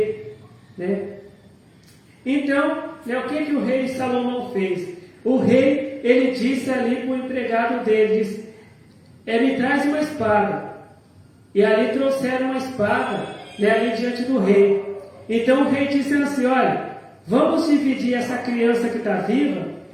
Então, o que o rei Salomão fez? O rei, ele disse ali para o empregado dele, disse: Me traz uma espada. E ali trouxeram uma espada, ali diante do rei. Então o rei disse assim: Olha, vamos dividir essa criança que está viva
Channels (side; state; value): both; identical; correlation 1.00